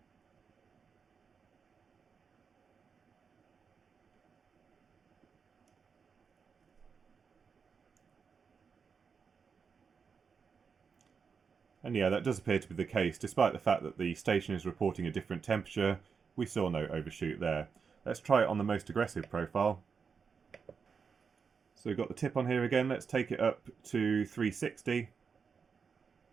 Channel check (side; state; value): left; quieter; 5.8 dB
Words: And yeah, that does appear to be the case. Despite the fact that the station is reporting a different temperature, we saw no overshoot there. Let's try it on the most aggressive profile. So we've got the tip on here again. Let's take it up to 360.